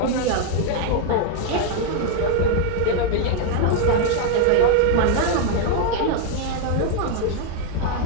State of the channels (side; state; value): both; different; correlation 0.00